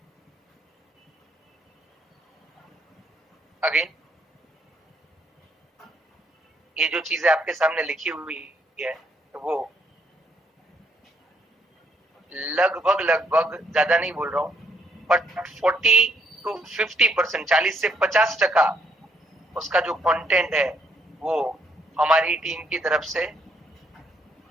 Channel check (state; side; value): normal; both; correlation 0.70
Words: अगेन ये जो चीजें आपके सामने लिखी हुई है वो लगभग लगभग, ज्यादा नहीं बोल रहा हूं, बट 40 to 50%, 40 से 50% उसका जो कंटेंट है वो हमारी टीम की तरफ से